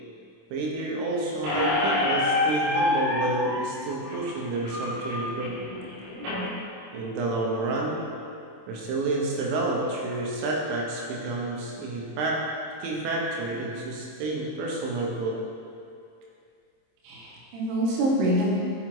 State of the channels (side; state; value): left; late; 26 ms